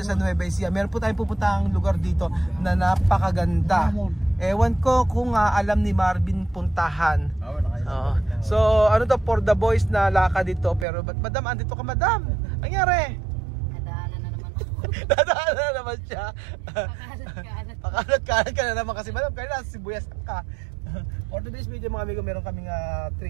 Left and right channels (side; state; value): left; drops out; at 10.9 s